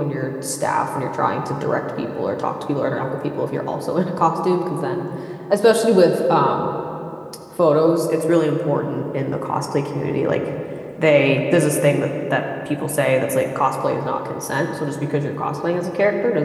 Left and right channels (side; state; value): both; identical; correlation 1.00